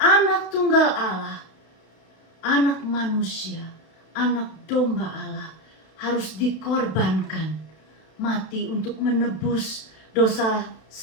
tunggal Allah, anak manusia, anak domba Allah harus dikorbankan, mati untuk menebus dosa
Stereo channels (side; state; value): right; late; 32 ms